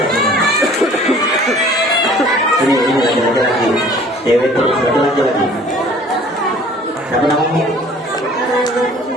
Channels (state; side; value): normal; both; correlation 0.51